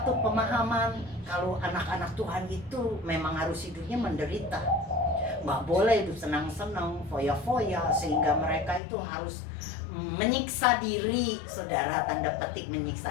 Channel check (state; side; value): drops out; right; at 8.8 s